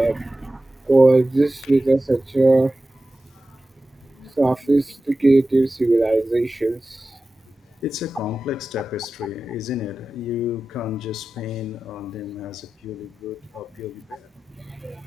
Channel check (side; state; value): both; normal; correlation 0.94